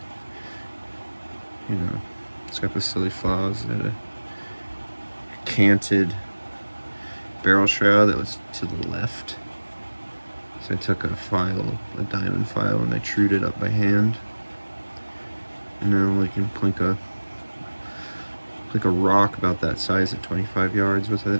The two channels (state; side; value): inverted; both; correlation -1.00